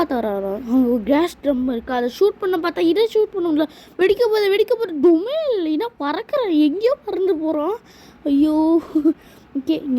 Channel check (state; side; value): identical; both; correlation 1.00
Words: வர. அவங்க கேஸ் ட்ரம் இருக்குது. அதை ஷூட் பண்ண பார்த்தா இதை ஷூட் பண்ணல. வெடிக்க போது டொமில் இல்லைன்னா பறக்கிறேன். எங்கேயோ பறந்து போகிறான். ஐயோ ஓகே